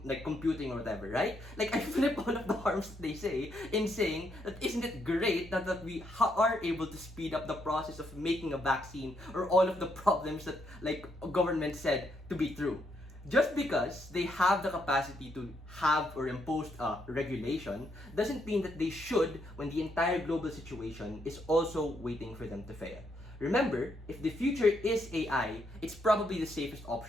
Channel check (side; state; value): both; normal; correlation 0.76